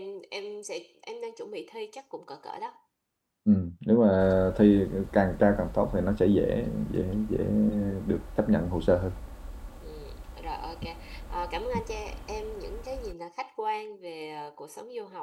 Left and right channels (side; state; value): both; identical; correlation 1.00